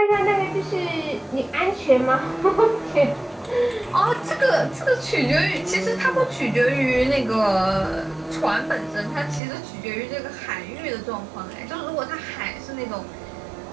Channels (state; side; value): drops out; left; at 9.4 s